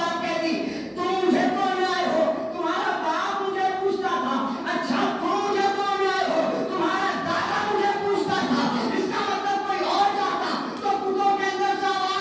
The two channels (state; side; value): identical; both; correlation 1.00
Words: कह दी, तुम मुझे तोड़ने आए हो, तुम्हारा बाप मुझे पूछता था। अच्छा तुम मुझे तोड़ने आए हो, तुम्हारा दादा मुझे पूछता था। इसका मतलब कोई और जाता तो बुतों के अंदर से